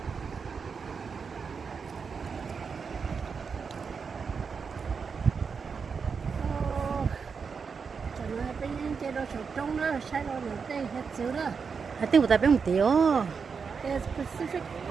chế độ sụt trống đó, sai rồi là tê hết xứ đó. Hãy tiêu tại bên một tiêu. The Pacific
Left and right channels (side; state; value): left; quieter; 5.7 dB